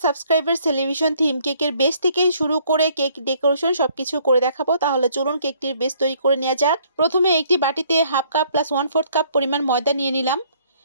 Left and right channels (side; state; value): both; inverted; correlation -0.63